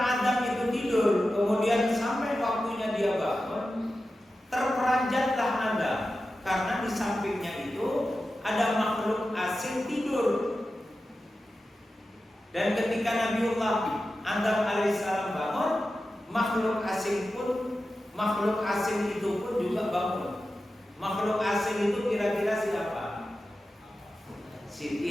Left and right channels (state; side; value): normal; both; correlation 0.93